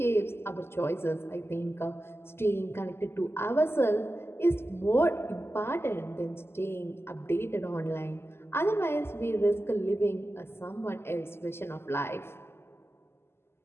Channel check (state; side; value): late; right; 0.12 ms